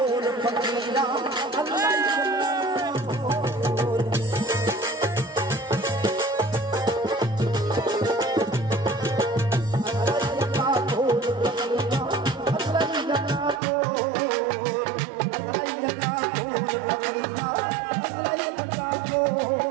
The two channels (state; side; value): drops out; left; at 13.6 s